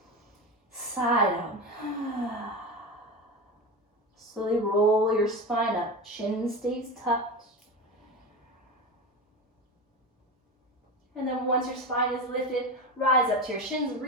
Side out. Slowly roll your spine up. Chin stays tucked. And then once your spine is lifted, rise up to your shins,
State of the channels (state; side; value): normal; both; correlation 0.23